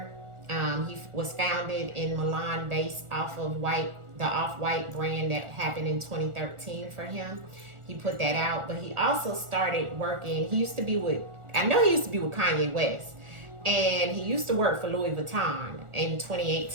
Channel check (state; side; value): late; left; 1.4 ms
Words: He was founded in Milan based off of the off-white brand that happened in 2013 for him. He put that out, but he also started working. He used to be with Kanye West, and he used to work for Louis Vuitton in